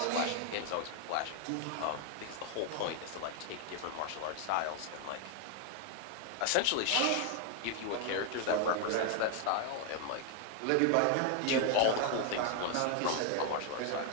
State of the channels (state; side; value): different; both; correlation 0.00